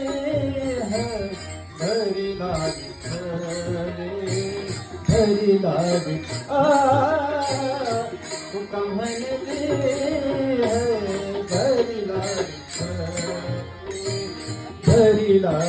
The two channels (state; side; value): identical; both; correlation 1.00